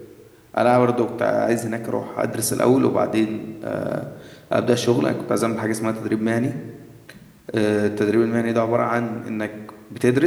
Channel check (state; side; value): identical; both; correlation 1.00